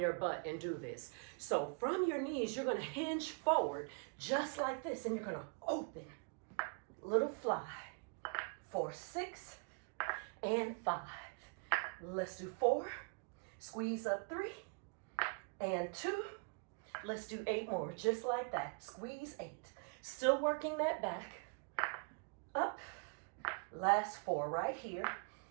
your butt and do this. So from your knees, you're going to hinge forward just like this, and you're going to open. Little fly. 4, 6, and 5. Let's do 4. Squeeze up 3, and 2. Let's do 8 more, just like that. Squeeze 8. Still working that back. Up. Last 4 right here.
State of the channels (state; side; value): quieter; left; 39.3 dB